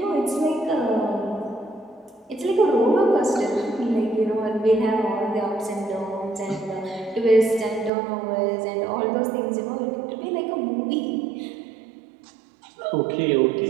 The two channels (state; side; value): drops out; left; at 7.9 s